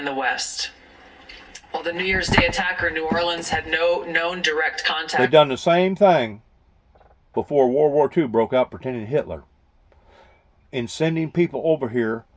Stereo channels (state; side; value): identical; both; correlation 1.00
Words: the West. While the New Year's Day attacker in New Orleans had no known direct contact... They've done the same thing before World War II broke out, pretending Hitler. In sending people over here